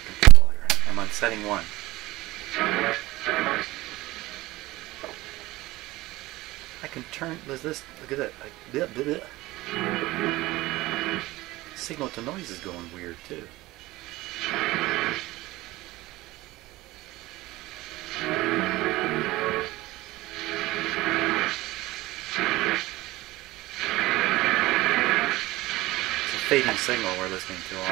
I'm on setting 1. I can turn this. Look at that. Signal to noise is going weird too. It's a fading signal we're listening to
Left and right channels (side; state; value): left; quieter; 18.8 dB